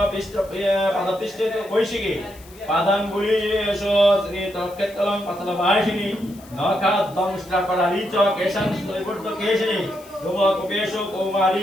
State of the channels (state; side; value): noise; left; hiss, 23 dB below the sound